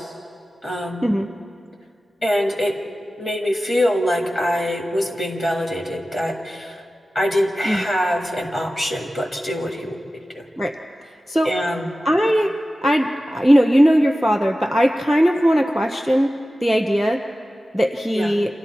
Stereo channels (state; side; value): normal; both; correlation 0.95